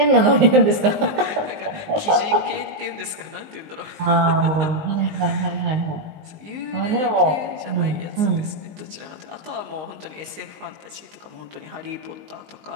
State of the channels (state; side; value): late; left; 19 ms